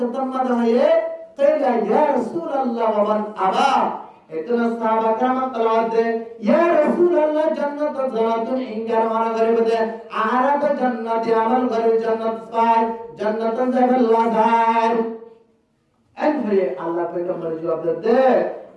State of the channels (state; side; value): identical; both; correlation 1.00